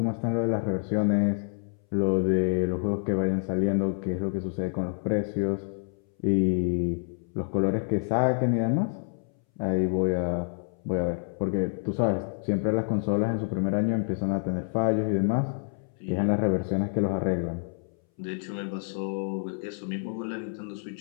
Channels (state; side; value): silent; right; 59 dB below the other